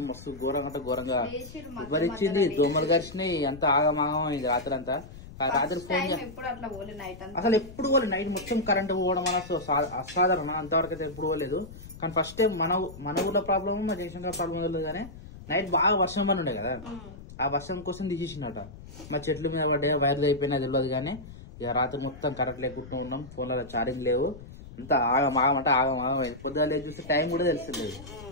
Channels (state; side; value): noise; left; rumble, 16 dB below the sound